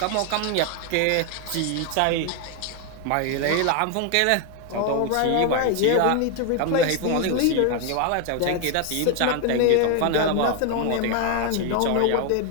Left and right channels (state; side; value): different; both; correlation 0.01